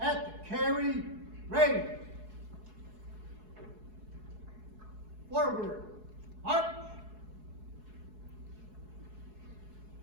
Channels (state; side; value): late; left; 4.7 ms